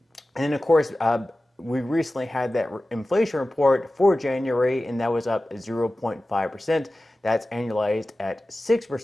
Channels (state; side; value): normal; both; correlation 0.96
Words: And of course, we recently had that inflation report for January, and that was up 0.5%. That's annualized at